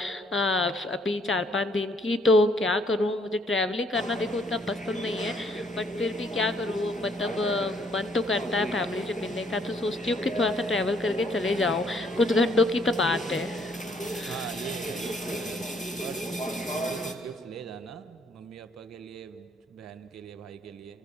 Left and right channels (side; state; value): both; normal; correlation 0.66